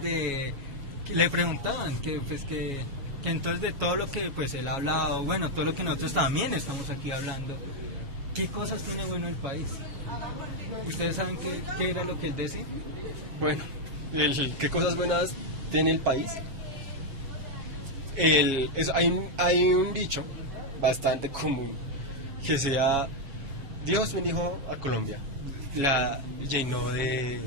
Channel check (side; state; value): left; late; 7.3 ms